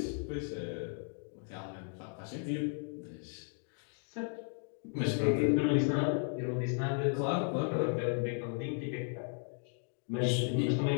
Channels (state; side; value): silent; right; 54 dB below the other